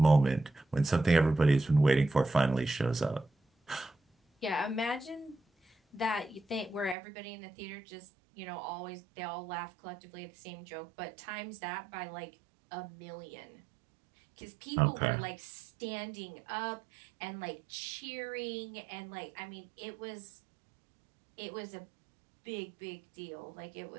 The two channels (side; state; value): left; drops out; at 7.0 s